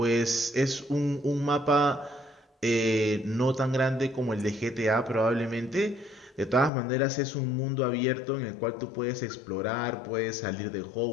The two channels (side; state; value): right; drops out; at 6.7 s